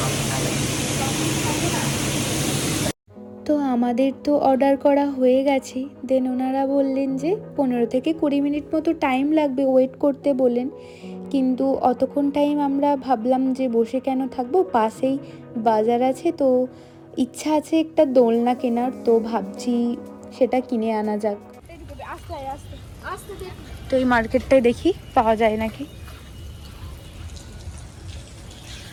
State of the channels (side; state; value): both; identical; correlation 1.00